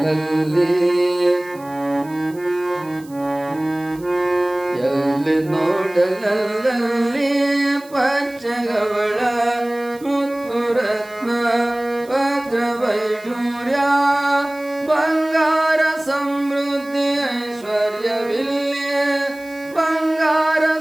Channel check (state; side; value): noise; right; hiss, 24 dB below the sound